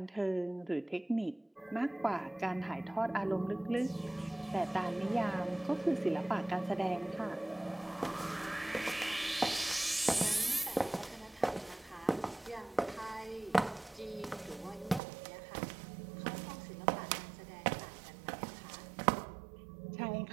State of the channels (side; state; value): left; drops out; at 15.0 s